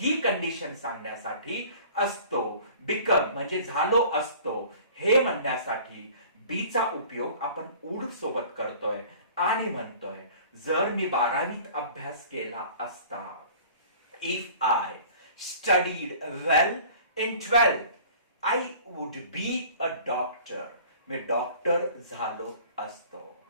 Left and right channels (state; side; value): inverted; both; correlation -0.47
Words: कंडिशन सांगण्यासाठी असतो, बिकम म्हणजे झालो असतो, हे म्हणण्यासाठी बीचा उपयोग आपण वुड सोबत करतोय आणि म्हणतोय जर मी 12वीत अभ्यास केला असता, if I studied well in 12th, I would be a doctor. Me doctor झालो असतो.